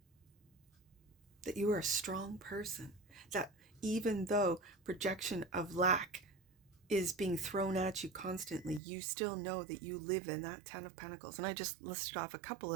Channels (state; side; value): drops out; left; at 8.8 s